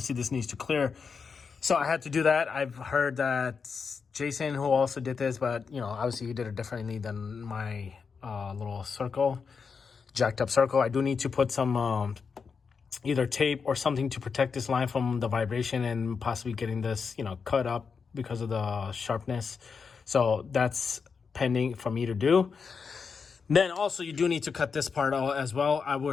this needs to clear. So I had to do that. I've heard that Jason, who also did this, but obviously he did it differently than my little circle, jacked up circle. I do need to put some either tape or something to protect this line from the vibration and possibly getting this cut up because of the sharpness. So that's pending for me to do. Then also you do need to cut this part out as well. I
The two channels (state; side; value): quieter; right; 5.5 dB